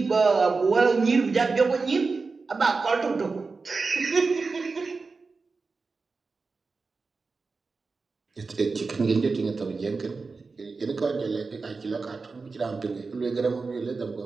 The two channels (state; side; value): quieter; left; 4.3 dB